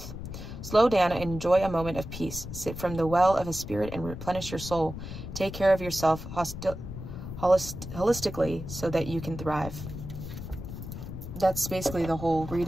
Slow down and enjoy a moment of peace. Sip from the well of a spirit and replenish your soul. Take care of yourself holistically so that you can thrive. That's basically the whole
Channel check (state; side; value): noise; left; rumble, 9 dB below the sound